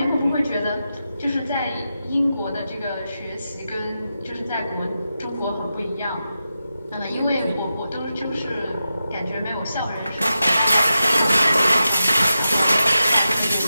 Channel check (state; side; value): inverted; both; correlation -0.90